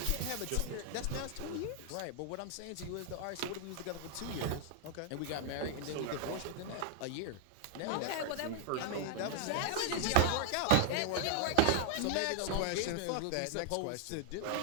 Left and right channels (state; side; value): different; both; correlation 0.00